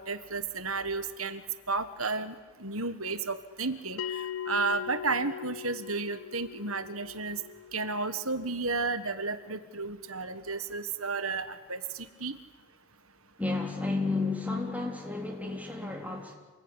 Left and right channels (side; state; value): both; normal; correlation 0.08